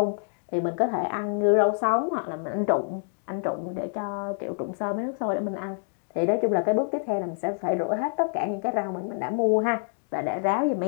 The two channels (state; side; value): silent; right; digital silence